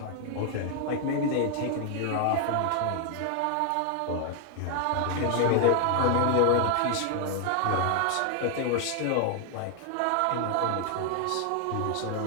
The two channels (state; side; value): different; both; correlation 0.00